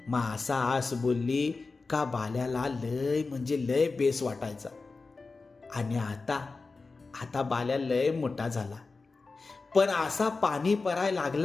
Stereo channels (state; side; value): quieter; right; 4.0 dB